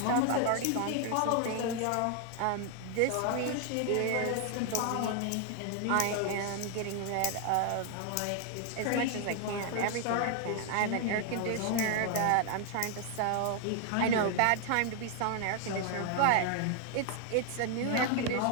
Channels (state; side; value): different; both; correlation 0.00